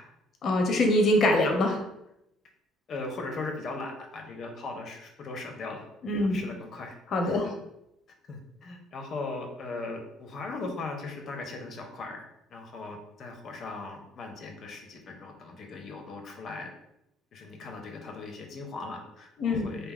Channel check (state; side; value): normal; both; correlation 0.63